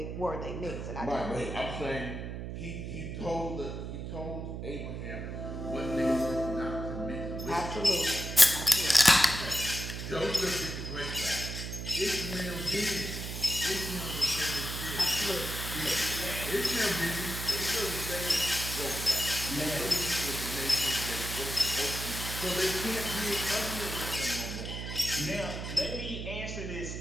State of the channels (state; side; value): noise; right; hum, 6 dB below the sound